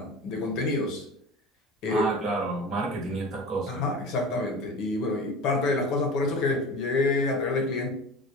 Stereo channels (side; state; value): both; normal; correlation 0.35